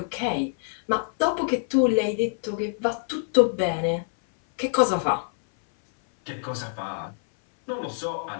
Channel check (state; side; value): silent; right; 58 dB below the other